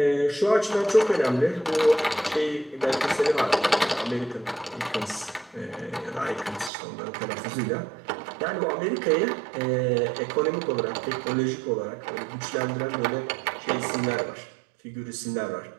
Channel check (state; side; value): drops out; left; at 6.7 s